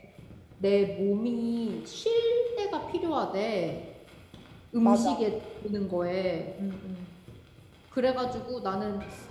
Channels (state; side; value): identical; both; correlation 1.00